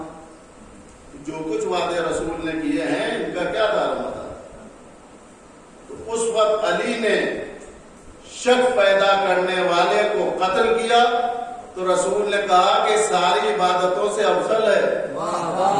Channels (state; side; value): identical; both; correlation 1.00